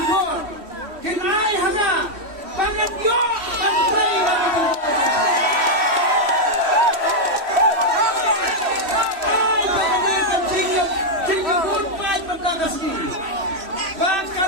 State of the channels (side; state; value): left; late; 3.1 ms